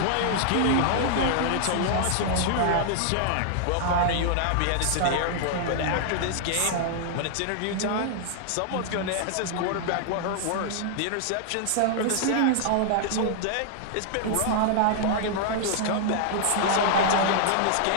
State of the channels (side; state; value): both; different; correlation -0.01